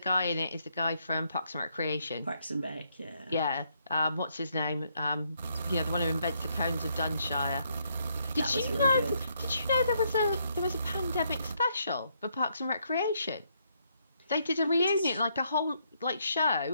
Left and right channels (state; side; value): inverted; both; correlation -0.74